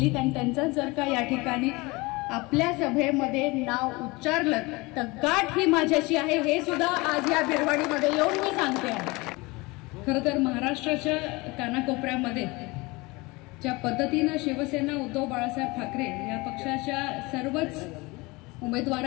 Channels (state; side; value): quieter; right; 24.1 dB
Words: आणि त्यांचं जर का या ठिकाणी आपल्या सभेमध्ये नाव उच्चारलं तर गाठ ही माझ्याशी आहे हे सुद्धा आज या बिरवाडीमध्ये येऊन मी सांगते आहे। खरं तर महाराष्ट्राच्या कानाकोपऱ्यामध्ये ज्या पद्धतीनं शिवसेना उद्धव बाळासाहेब ठाकरे या पक्षाच्या सर्वच